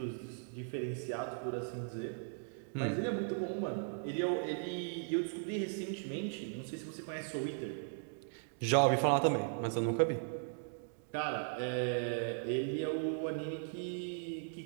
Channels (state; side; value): silent; left; digital silence